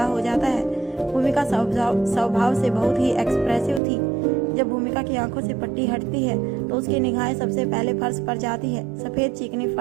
हो जाता है। भूमिका स्वभाव से बहुत ही एक्सप्रेसिव थी। जब भूमिका की आंखों से पट्टी हटती है तो उसकी निगाहें सबसे पहले फर्श पर जाती है। सफेद चिकनी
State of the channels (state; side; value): drops out; left; at 3.8 s